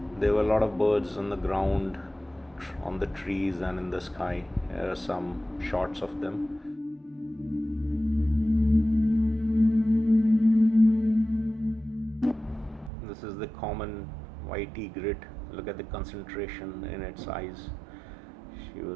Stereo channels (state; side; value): drops out; left; at 12.9 s